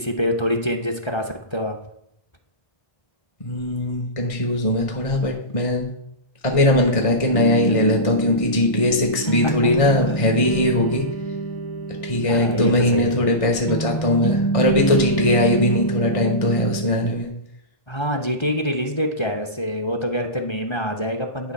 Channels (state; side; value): late; right; 1.6 ms